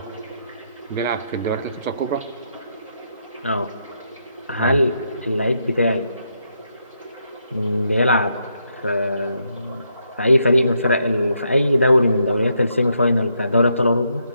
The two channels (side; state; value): both; inverted; correlation -0.78